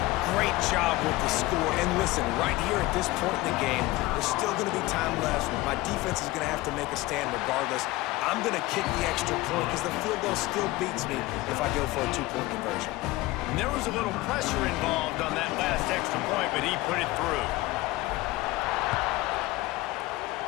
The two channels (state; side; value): quieter; right; 19.2 dB